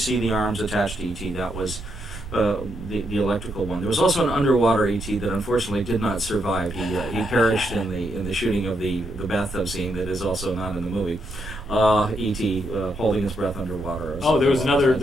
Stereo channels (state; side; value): noise; right; rumble, 12 dB below the sound